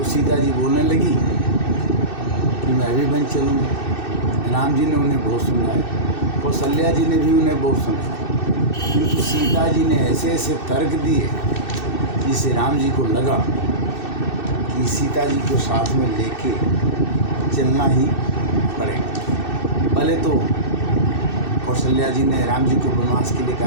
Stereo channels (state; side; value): late; right; 2.6 ms